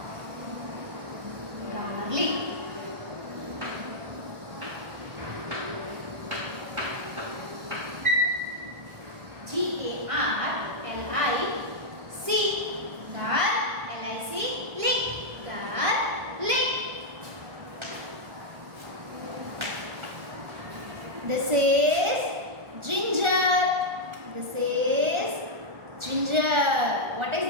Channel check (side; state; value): left; late; 1.4 ms